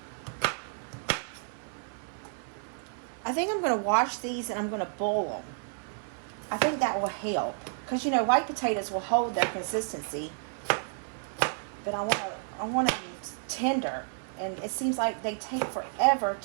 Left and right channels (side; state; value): left; silent; 57 dB below the other